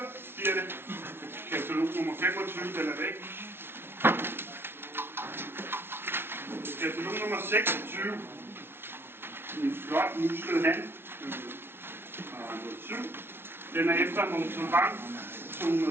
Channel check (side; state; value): left; late; 0.11 ms